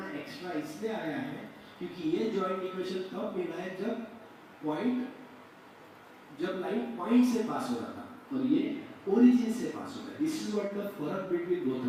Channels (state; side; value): identical; both; correlation 1.00